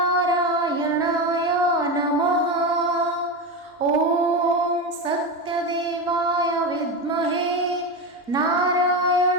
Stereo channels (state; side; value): normal; both; correlation 0.17